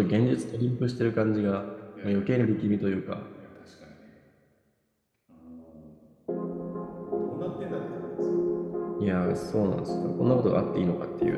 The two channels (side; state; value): both; identical; correlation 1.00